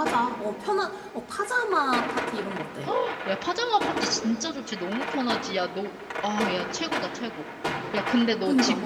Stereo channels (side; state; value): both; identical; correlation 1.00